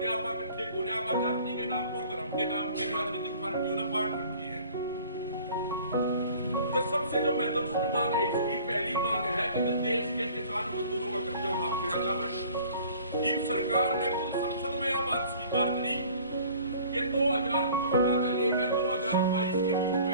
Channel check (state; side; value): inverted; both; correlation -0.49